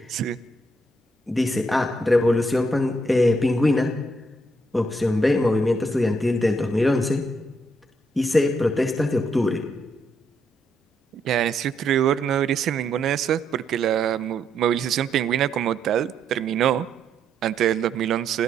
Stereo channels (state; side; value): normal; both; correlation 0.76